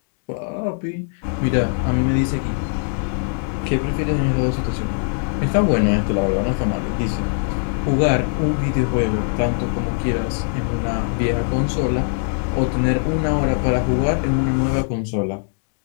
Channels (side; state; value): right; silent; 62 dB below the other